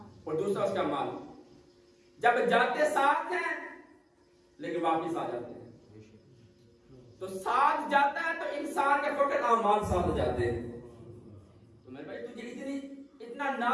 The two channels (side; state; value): both; identical; correlation 1.00